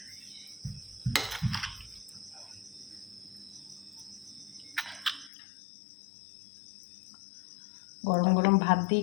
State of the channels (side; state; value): right; drops out; at 5.3 s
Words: গরম গরম ভাত দিয়ে